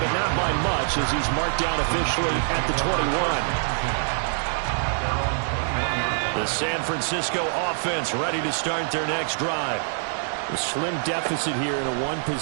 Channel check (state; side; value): silent; left; digital silence